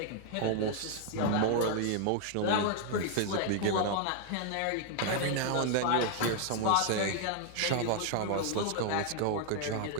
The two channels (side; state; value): both; different; correlation 0.00